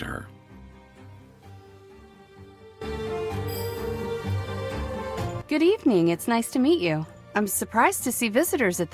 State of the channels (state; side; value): identical; both; correlation 1.00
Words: her. Good evening, it's nice to meet you. I'm surprised to see visitors at